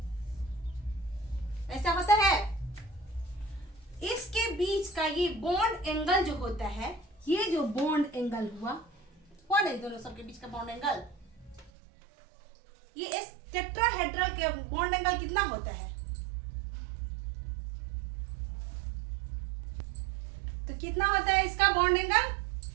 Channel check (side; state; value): left; drops out; at 11.7 s